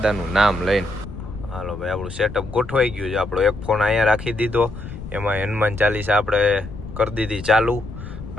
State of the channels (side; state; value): left; noise; rumble, 11 dB below the sound